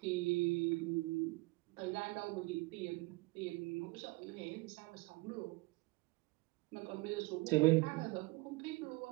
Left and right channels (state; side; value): quieter; left; 23.9 dB